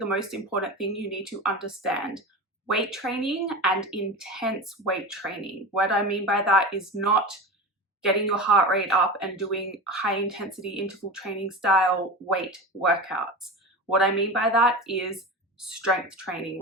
most important thing you need to understand. Weight training and intense weight training. What I mean by that is not getting your heart rate up and doing high intensity interval training style weight workouts. What I mean by that is strength training,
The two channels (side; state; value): both; normal; correlation 0.27